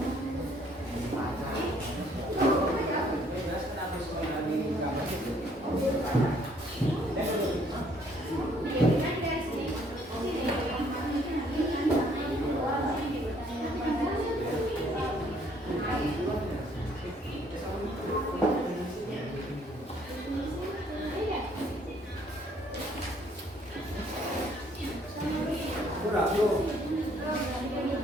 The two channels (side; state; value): both; normal; correlation 0.63